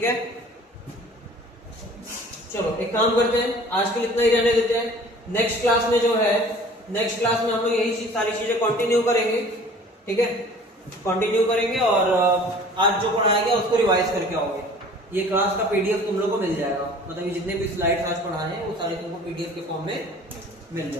है, चलो एक काम करते हैं, आज के लिए इतना ही रहने देते हैं। नेक्स्ट क्लास में जो है, नेक्स्ट क्लास में हम लोग यही सारी चीजें कंटिन्यू करेंगे, ठीक है, कंटिन्यू करेंगे और आज जो पढ़ाया गया उसको रिवाइज करके आओगे। ये क्लास का पीडीएफ तुम लोग को मिल जाएगा, मतलब ये जितने भी स्लाइड्स आज पढ़ाए हैं वो सारे तुमको पीडीएफ के फॉर्म में मिल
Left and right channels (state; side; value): normal; both; correlation 0.48